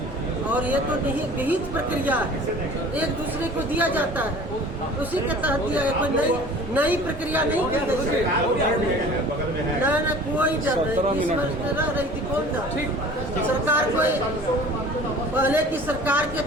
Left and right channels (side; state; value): both; normal; correlation 0.45